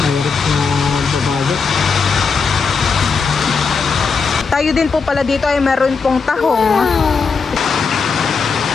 Mayroon na babagat. Tayo din po pala dito ay meron pong tahong.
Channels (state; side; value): quieter; right; 5.1 dB